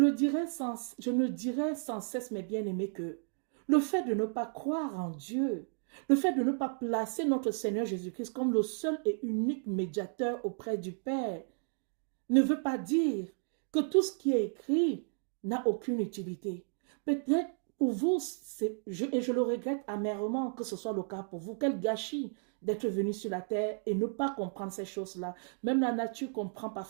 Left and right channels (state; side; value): silent; left; 56 dB below the other